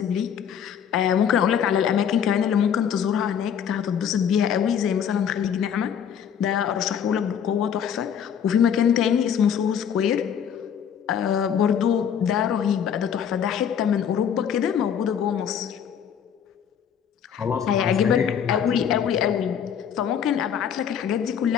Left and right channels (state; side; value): quieter; right; 8.3 dB